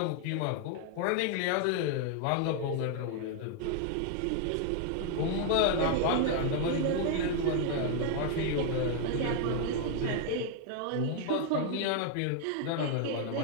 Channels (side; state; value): both; different; correlation 0.00